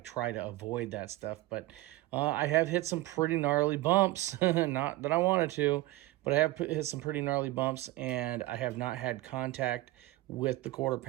to avoid that stuff, but I have hit some pretty gnarly bumps. Not that I wanted to, but I have hit some pretty gnarly bumps, and I have not had contact with the quarter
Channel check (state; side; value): quieter; left; 18.1 dB